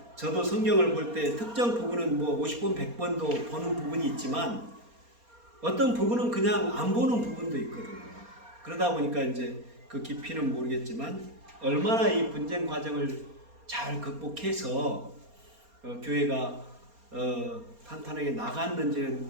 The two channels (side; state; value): left; late; 4.3 ms